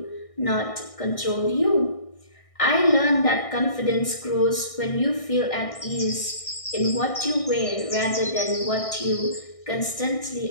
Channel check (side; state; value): right; late; 1.6 ms